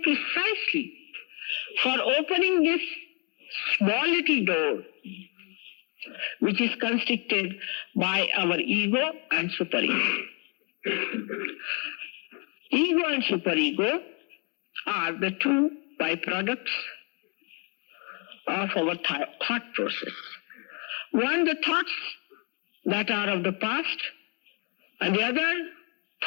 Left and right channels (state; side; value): quieter; right; 33.7 dB